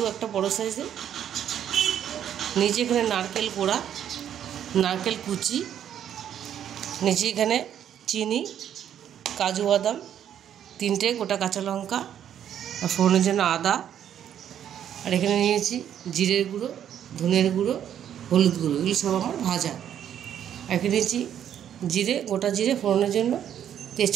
একটা বড়ো সাইজের। নিচে এখানে নারকেল কোড়া, নারকেল কুচি। নিচে এখানে চিনি, কাজু বাদাম, 3টে গোটা কাঁচা লঙ্কা, আর ফোড়নের জন্য আদা। আর এখানে নিয়েছি জিরের গুঁড়ো, ধনের গুঁড়ো, হলুদ গুঁড়ো, এগুলো সব আমার ভাজা। আর এখানে নিয়েছি জিরে, গোটা জিরে ফোড়নের জন্য,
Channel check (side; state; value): left; quieter; 9.8 dB